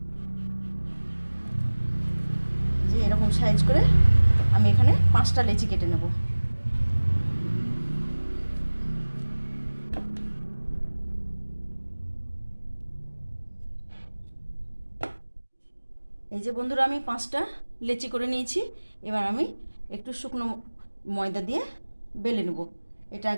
যে এরকম সাইজ করে আমি এখানে 5টা লেচি কেটে নেব। এই যে বন্ধুরা, আমি 5টা লেচি করে নিয়েছি। এবার আমি একটু শুকনো ময়দা দিয়ে বেলে নেব। এটা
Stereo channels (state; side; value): inverted; both; correlation -1.00